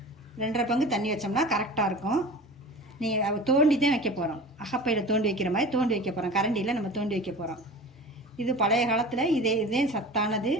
2.5 பங்கு தண்ணி வச்சோம்னா கரெக்டாக இருக்கும். நீங்கள் தோண்டி தான் வைக்க போகிறோம். அகப்பையில் தோண்டி வைக்கிற மாதிரி தோண்டி வைக்க போகிறோம். கரண்டியில் நம்ம தோண்டி வைக்க போகிறோம். இது பழைய காலத்தில் இதே சத்தானது.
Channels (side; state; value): both; normal; correlation 0.36